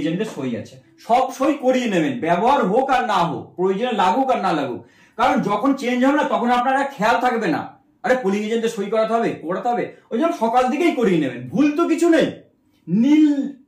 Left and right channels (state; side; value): identical; both; correlation 1.00